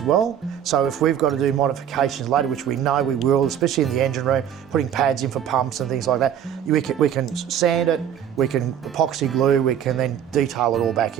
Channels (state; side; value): quieter; left; 9.4 dB